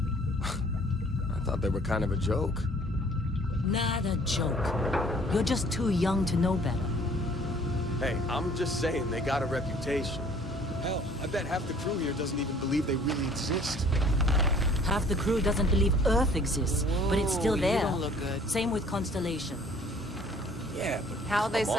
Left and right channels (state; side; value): normal; both; correlation 0.55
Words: thought they were kind of a joke. Not a joke. You're just too young to know better. Hey, I'm just saying they got a reputation. Hell, I bet half the crew here doesn't even believe they really exist. Half the crew doesn't believe Earth exists, but it's still there. You don't look good. Same with Constellation. Yeah, but How'd they come